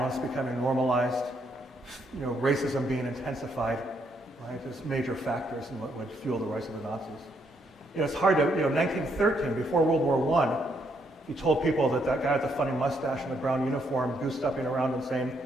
becoming normalized, racism being intensified, right, as major factors in what would fuel the rise of the Nazis. It's hard to, 1913, before World War I, you told people that guy with the funny mustache and the brown uniform, goose-stepping around and saying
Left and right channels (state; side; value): normal; both; correlation 0.74